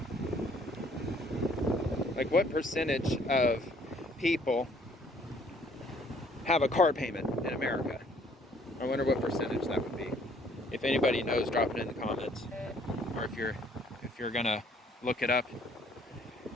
of people have a car payment in America? I wonder what percentage that would be. If anybody knows, drop it in the comments. Or if you're gonna look it up.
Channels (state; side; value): normal; both; correlation 0.61